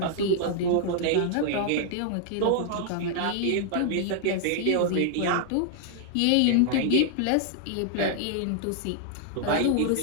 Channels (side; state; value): both; different; correlation -0.01